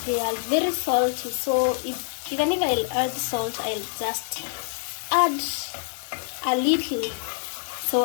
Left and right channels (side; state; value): right; silent; digital silence